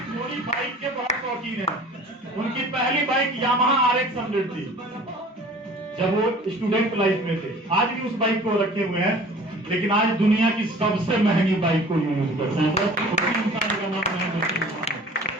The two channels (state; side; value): normal; both; correlation 0.46